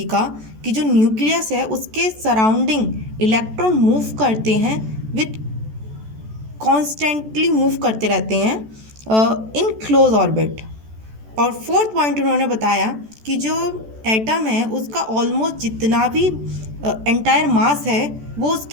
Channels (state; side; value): late; left; 14 ms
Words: का कि जो न्यूक्लियस है उसके सराउंडिंग इलेक्ट्रॉन मूव करते हैं विथ कॉन्स्टेंटली मूव करते रहते हैं इन क्लोज ऑर्बिट। और फोर्थ पॉइंट उन्होंने बताया कि जो एटम है उसका ऑलमोस्ट जितना भी एंटायर मास है वो